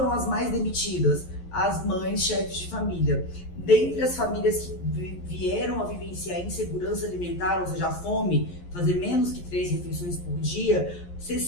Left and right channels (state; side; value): late; right; 11 ms